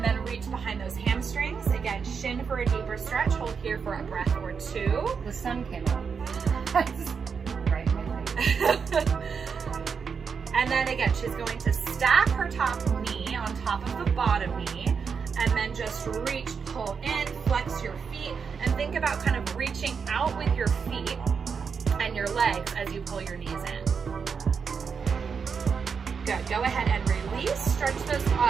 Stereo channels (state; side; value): quieter; left; 6.0 dB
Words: then reach behind those hamstrings. Again, shin for a deeper stretch. Hold here for a breath or 2. The sun came out. Right in my face. And then again, she's going to stack her top knee on top of the bottom knee, and then just reach, pull in, flex your feet, and think about kind of reaching out with your feet and your legs as you pull your knees in. Good. Go ahead and release. Stretch those